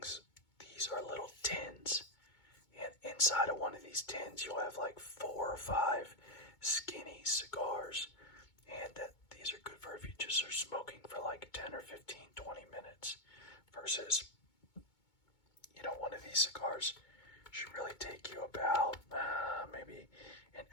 are little tins. And inside of one of these tins, you'll have like 4 or 5 skinny cigars. And these are good for if you just are smoking for like 10 or 15, 20 minutes. Versus, one of these cigars should really take you about maybe an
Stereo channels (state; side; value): late; right; 2.2 ms